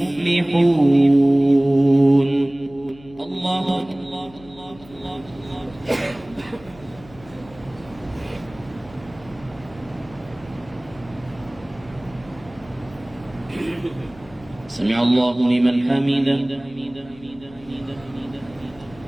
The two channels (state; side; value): noise; left; hum, 22 dB below the sound